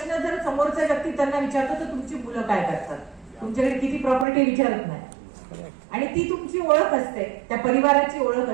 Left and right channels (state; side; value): drops out; left; at 4.2 s